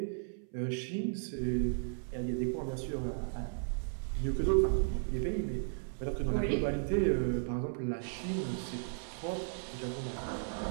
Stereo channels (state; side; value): silent; left; 54 dB below the other